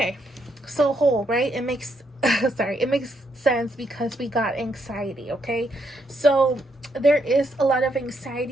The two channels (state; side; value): normal; both; correlation 0.76